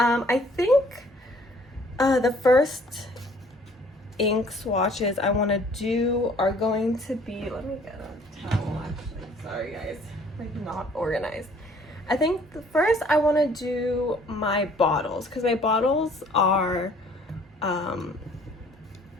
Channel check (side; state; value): both; normal; correlation 0.57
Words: think the first ink swatches I want to do are going to be, let me get a towel actually, sorry guys, like not organized. I think first I want to do my bottles, because my bottles are